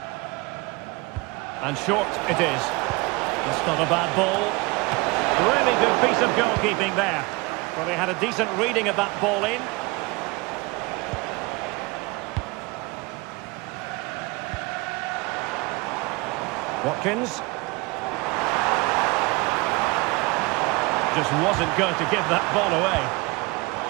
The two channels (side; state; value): left; quieter; 24.9 dB